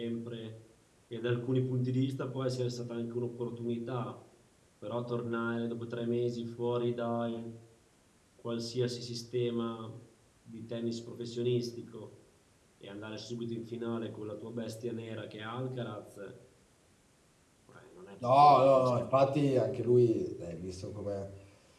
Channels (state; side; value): identical; both; correlation 1.00